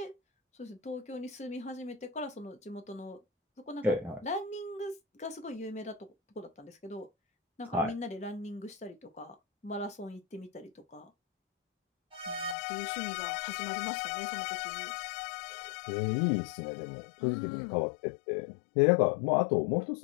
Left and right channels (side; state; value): right; drops out; at 12.6 s